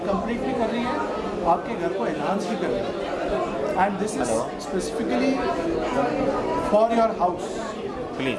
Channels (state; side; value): identical; both; correlation 1.00